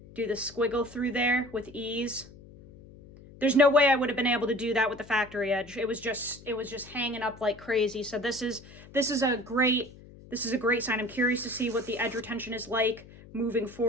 do the squiggle through there with ease? There's no way I would have been able to do that with the factory edge. It was just hanging up like crazy. So this is a great sign. I'm curious to see what the edge retention is like moving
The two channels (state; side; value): noise; left; hum, 20 dB below the sound